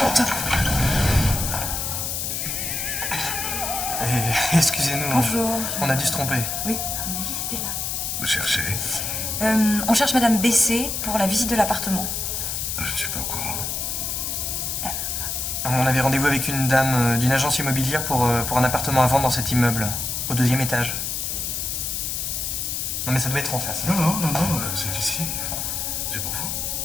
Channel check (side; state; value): left; noise; hiss, 2 dB below the sound